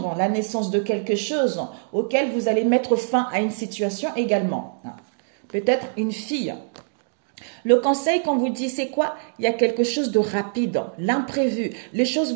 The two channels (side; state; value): left; silent; digital silence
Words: la naissance de quelque chose auquel vous allez mettre fin à une situation également. Peut-être une fille. Le conseil qu'on vous dit, c'est quoi? Il y a quelque chose de rapide, l'imprévu. Les choses